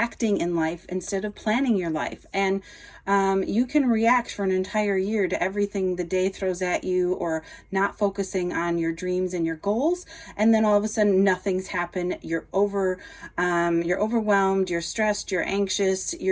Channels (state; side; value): identical; both; correlation 1.00